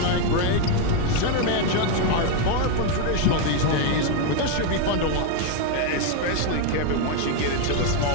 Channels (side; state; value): both; different; correlation 0.01